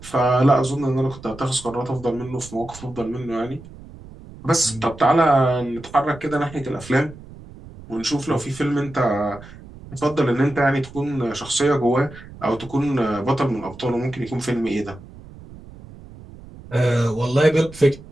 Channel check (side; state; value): right; noise; rumble, 18 dB below the sound